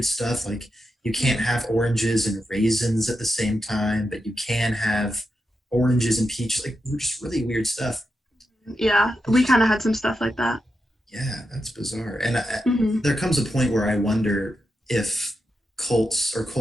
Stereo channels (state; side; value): normal; both; correlation 0.87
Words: stuff, like you can't have oranges and raisins at the same time, but you can have oranges and peaches, like just really weird stuff. Yeah, we kind of had some stuff like that. Yeah, that's bizarre. And there comes a point where I wonder if cults or